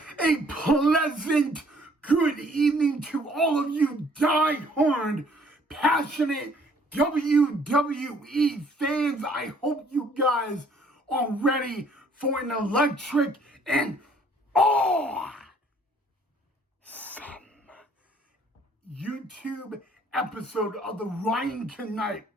A pleasant good evening to all of you die-hard, passionate WWE fans. I hope you guys are ready for an electric and awesome YouTube episode of the Ryan Knight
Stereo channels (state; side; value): normal; both; correlation 0.60